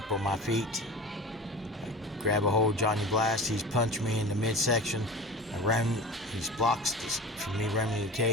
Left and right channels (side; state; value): both; normal; correlation 0.34